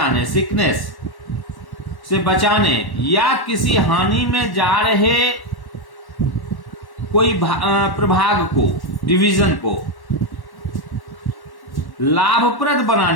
सिकनेस से बचाने, या किसी हानि में जा रहे कोई प्रभाग को, डिवीजन को लाभप्रद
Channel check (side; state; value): right; late; 1.1 ms